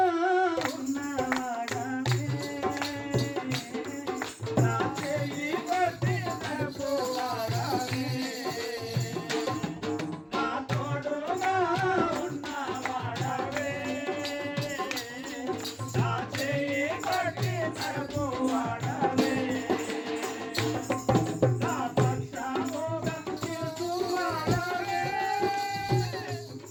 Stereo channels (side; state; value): both; identical; correlation 1.00